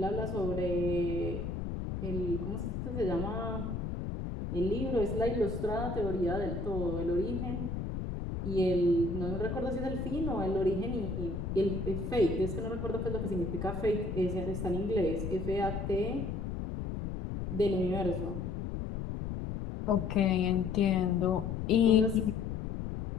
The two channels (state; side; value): noise; left; rumble, 4 dB below the sound